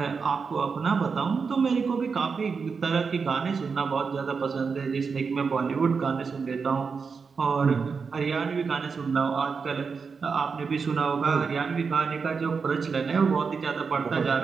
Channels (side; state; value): left; quieter; 5.3 dB